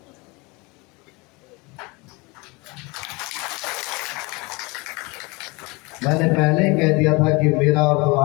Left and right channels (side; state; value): right; quieter; 26.6 dB